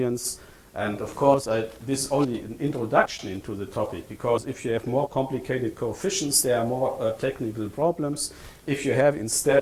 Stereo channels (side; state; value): both; identical; correlation 1.00